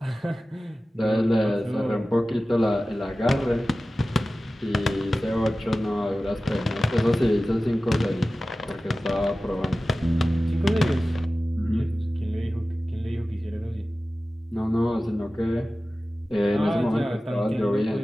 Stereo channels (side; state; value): both; normal; correlation 0.96